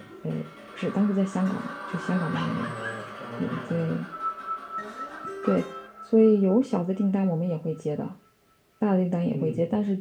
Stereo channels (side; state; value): both; identical; correlation 1.00